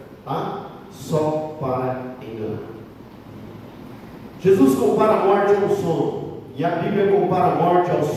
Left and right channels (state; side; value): identical; both; correlation 1.00